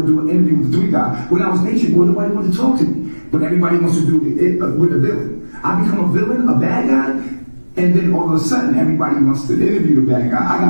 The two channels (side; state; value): both; inverted; correlation -1.00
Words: to do an interview with the 3 guy. When I was Nature Boy, nobody wanted to talk to me. But everybody wants to do it with a villain. I become a villain, a bad guy, and then all of a sudden everybody wants to interview the bad guy. I